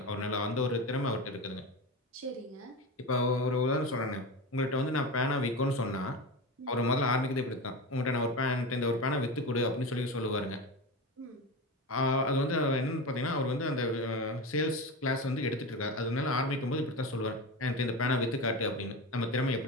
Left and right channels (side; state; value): both; normal; correlation 0.23